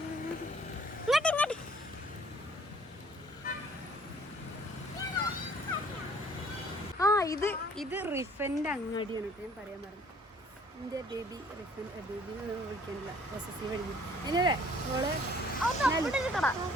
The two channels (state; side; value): normal; both; correlation 0.57